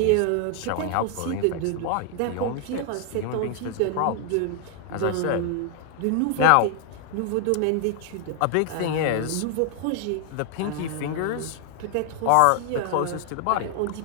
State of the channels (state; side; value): different; both; correlation 0.00